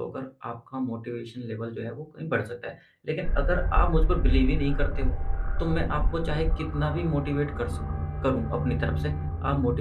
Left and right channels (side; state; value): both; identical; correlation 1.00